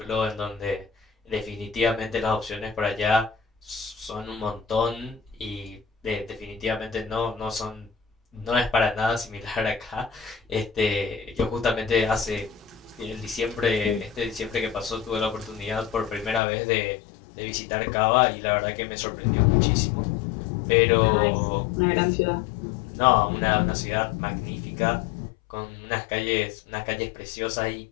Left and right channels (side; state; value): right; drops out; at 16.4 s